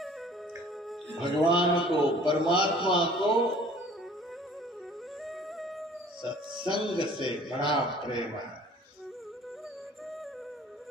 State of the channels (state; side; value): normal; both; correlation 0.51